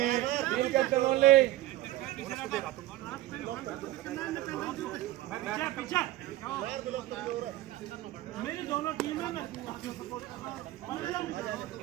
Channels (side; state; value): left; quieter; 15.9 dB